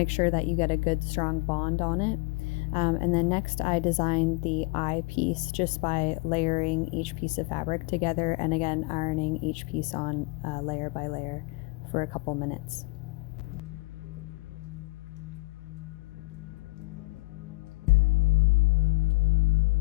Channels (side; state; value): right; quieter; 25.9 dB